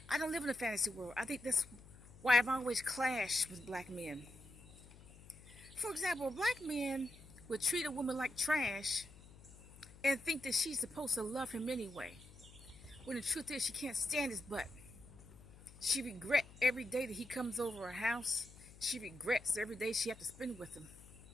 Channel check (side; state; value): left; noise; hum, 20 dB below the sound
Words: I don't live in a fantasy world. I think that's why I've always clashed with black men. For example, black men would treat a woman like trash and think that she's supposed to love him anyway. When the truth is, she can't stand his butt. She regrets every day that he comes over her house. She regrets every day she has to spend with him.